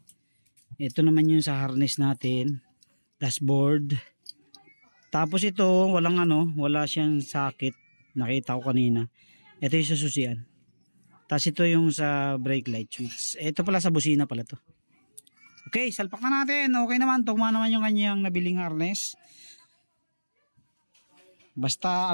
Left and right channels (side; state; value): both; inverted; correlation -1.00